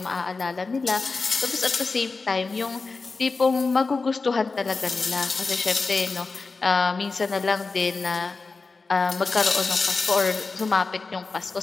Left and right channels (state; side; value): quieter; right; 4.1 dB